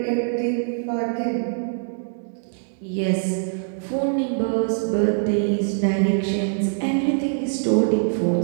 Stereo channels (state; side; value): silent; left; digital silence